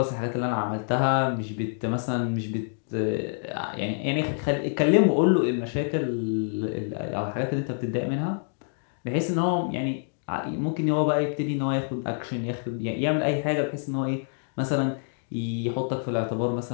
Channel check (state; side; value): silent; right; digital silence